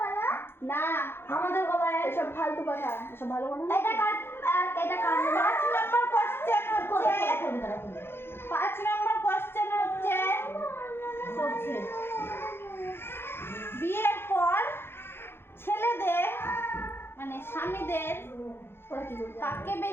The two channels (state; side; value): late; right; 0.11 ms